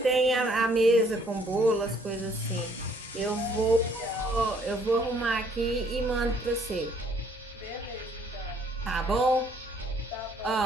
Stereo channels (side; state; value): both; normal; correlation 0.63